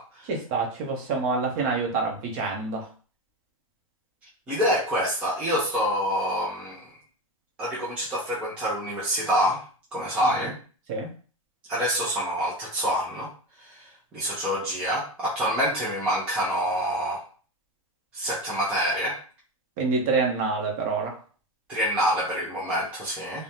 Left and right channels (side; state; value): both; normal; correlation 0.23